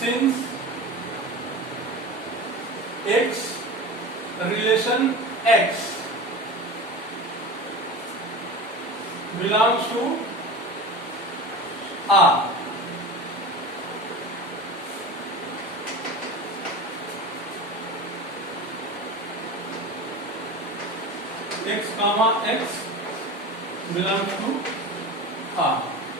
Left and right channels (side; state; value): both; normal; correlation 0.31